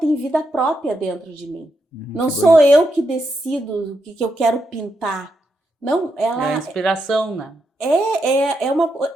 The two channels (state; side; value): normal; both; correlation 0.82